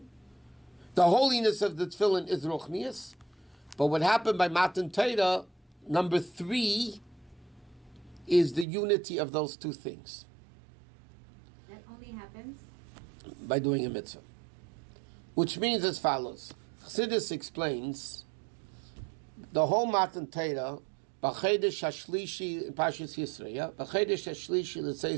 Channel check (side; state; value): left; drops out; at 8.7 s